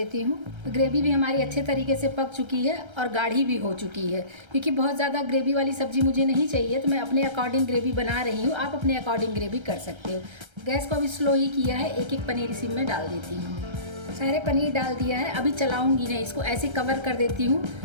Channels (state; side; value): late; left; 1.3 ms